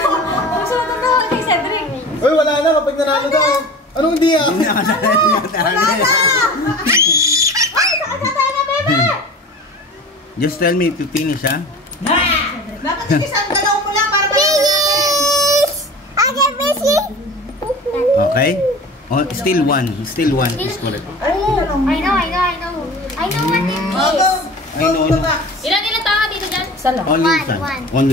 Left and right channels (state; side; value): normal; both; correlation 0.37